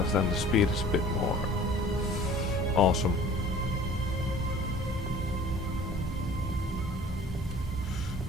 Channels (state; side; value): normal; both; correlation 0.48